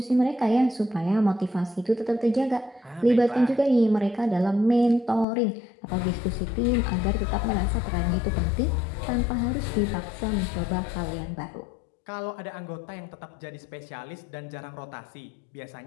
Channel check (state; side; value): drops out; right; at 5.2 s